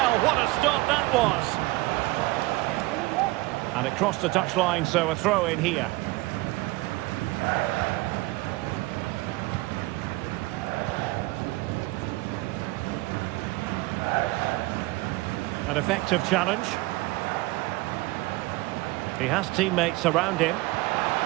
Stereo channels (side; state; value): left; quieter; 21.2 dB